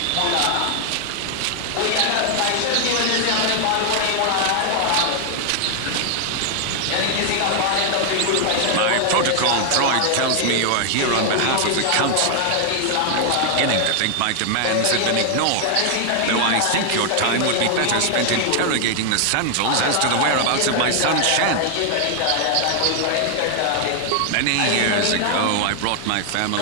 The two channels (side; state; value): both; different; correlation 0.00